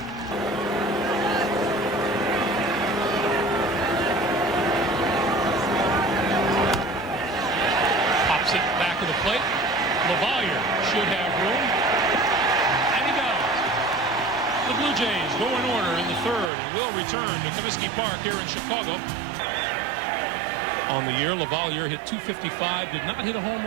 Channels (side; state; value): left; drops out; at 16.5 s